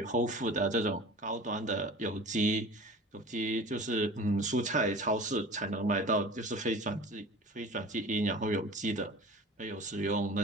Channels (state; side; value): normal; both; correlation 0.39